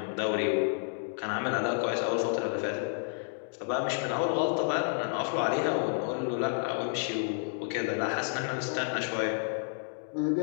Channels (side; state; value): right; silent; digital silence